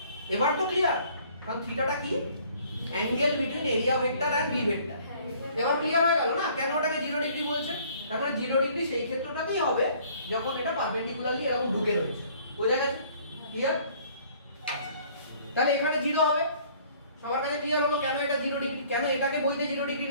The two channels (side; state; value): both; inverted; correlation -0.57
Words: এবার তো ক্লিয়ার, কারণ থিটাটা কি, angle between area vector and B vector. এবার ক্লিয়ার হয়ে গেল না কেন ওটাকে 0 ডিগ্রি বলছে। তারপরে 0 ডিগ্রি সেই ক্ষেত্রটাতেই হবে যখন এটা পারপেন্ডিকুলারলি এরকম ঢুকে রয়েছে। বোঝা গেছে? ক্লিয়ার? তাহলে এখানে 0 হবে। সবার কাছে ক্লিয়ার হলো কেন এটা 0 ডিগ্রি, কেন এটাকে বইতে 0 ডিগ্রি